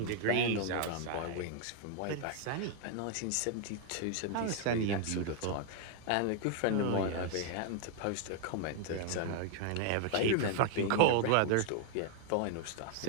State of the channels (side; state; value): both; different; correlation 0.00